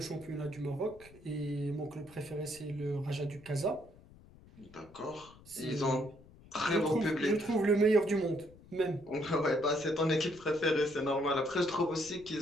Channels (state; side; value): noise; left; rumble, 23 dB below the sound